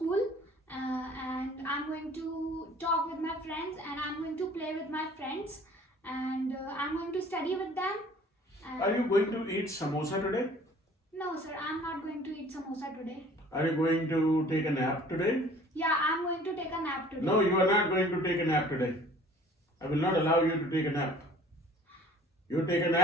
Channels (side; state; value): both; normal; correlation 0.51